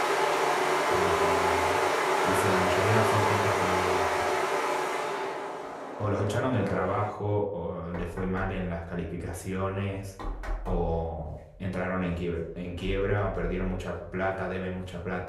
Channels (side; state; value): both; identical; correlation 1.00